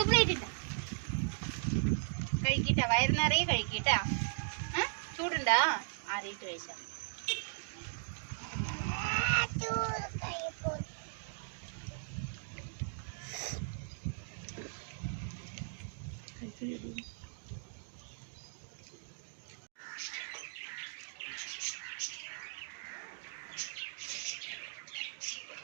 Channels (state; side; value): silent; left; digital silence